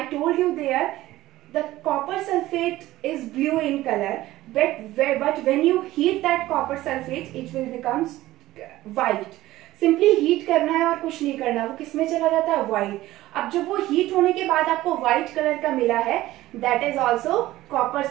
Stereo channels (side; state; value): left; quieter; 16.2 dB